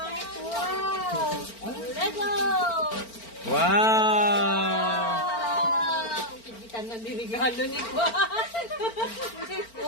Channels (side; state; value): right; late; 4.4 ms